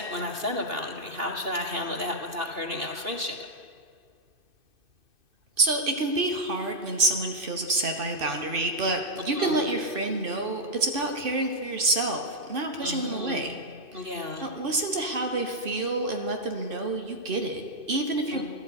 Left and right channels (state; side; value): late; left; 2.6 ms